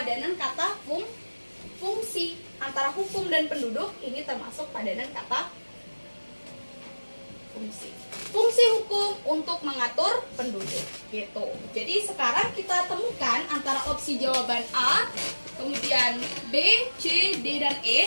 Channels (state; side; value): inverted; both; correlation -1.00